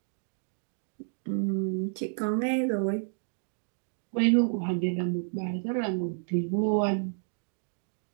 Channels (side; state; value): left; silent; 57 dB below the other